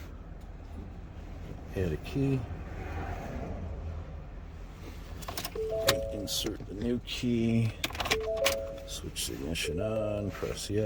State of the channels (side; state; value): both; identical; correlation 1.00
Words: Add a key. Insert the new key. Switch the ignition on. Press